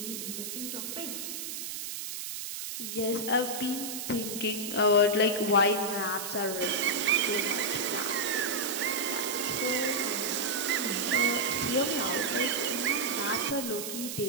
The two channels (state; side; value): noise; right; hiss, 6 dB below the sound